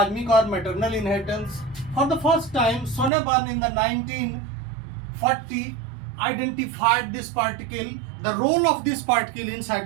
or maternal inheritance. For the first time, Sonneborn in the 1940 identified this particle, the role of this particle in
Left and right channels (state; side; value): drops out; left; at 3.1 s